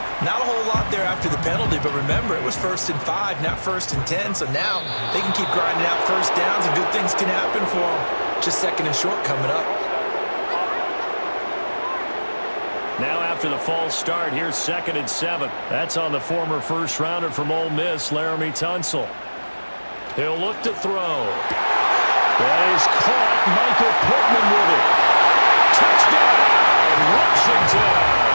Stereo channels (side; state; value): both; inverted; correlation -1.00